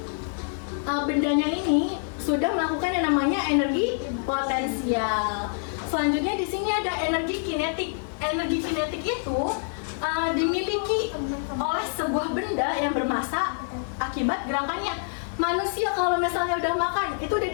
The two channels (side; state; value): right; silent; digital silence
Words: bendanya ini sudah melakukan yang namanya energi potensial. Selanjutnya di sini ada energi kinetik. Energi kinetik itu dimiliki oleh sebuah benda yang bermassa akibat gerakannya. Manusia kalau misalnya udah makan, itu udah